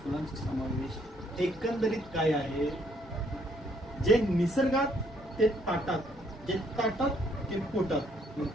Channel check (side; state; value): both; normal; correlation 0.68